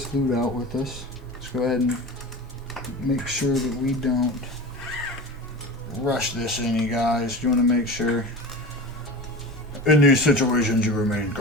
loot out with us. Let's go ahead and make sure that we don't rush this in, you guys. You want to make sure in these situations you remain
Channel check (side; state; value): both; normal; correlation 0.31